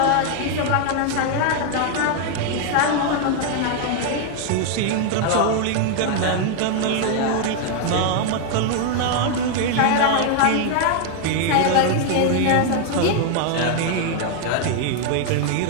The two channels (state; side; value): different; both; correlation 0.00